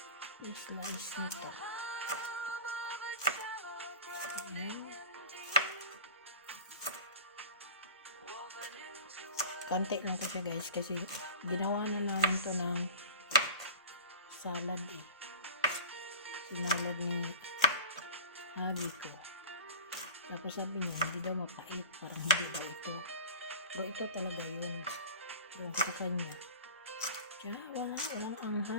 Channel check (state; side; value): inverted; both; correlation -0.38